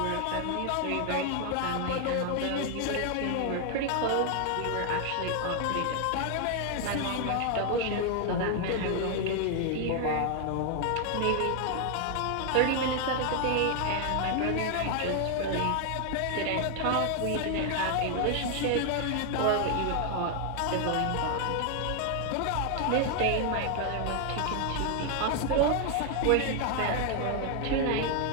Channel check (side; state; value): both; different; correlation 0.00